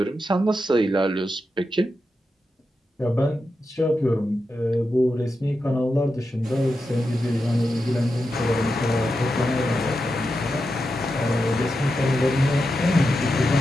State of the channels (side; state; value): both; normal; correlation 0.88